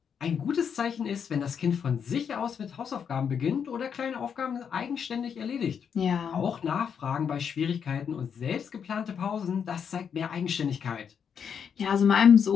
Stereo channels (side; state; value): right; quieter; 7.3 dB